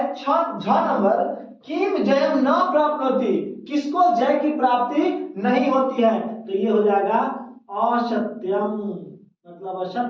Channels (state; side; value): identical; both; correlation 1.00